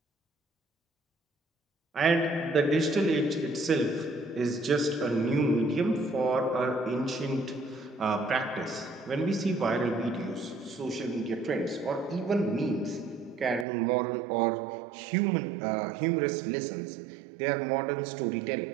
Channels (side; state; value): left; drops out; at 13.7 s